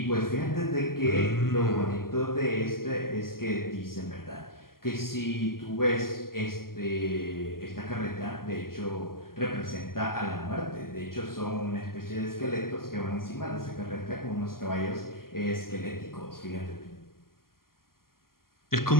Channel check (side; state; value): right; late; 0.92 ms